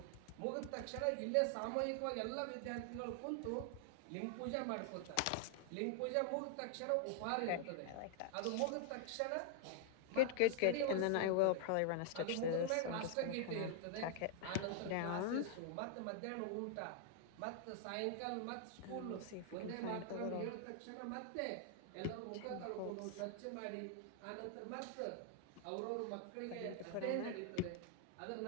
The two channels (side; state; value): both; different; correlation 0.00